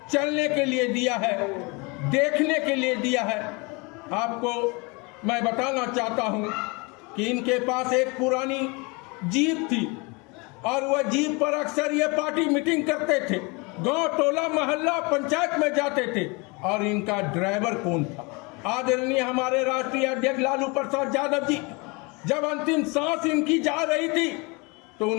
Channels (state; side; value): quieter; right; 28.5 dB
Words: चलने के लिए दिया है, देखने के लिए दिया है। आपको मैं बताना चाहता हूं कि इनके पास एक पुरानी जीप थी और वह जीप पर अक्सर ये पार्टी मीटिंग करते थे, गांव, टोला, मोहल्ला, पंचायत में जाते थे। और इनका ड्राइवर कौन था? आदरणीय हमारे राष्ट्रीय अध्यक्ष लालू प्रसाद यादव जी, जब अंतिम सांस इनकी जा रही थी तो